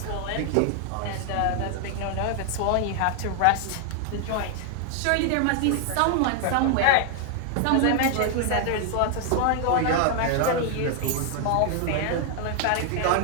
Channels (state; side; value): different; both; correlation 0.00